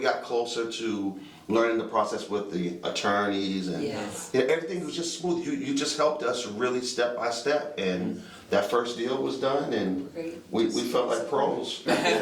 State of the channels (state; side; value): identical; both; correlation 1.00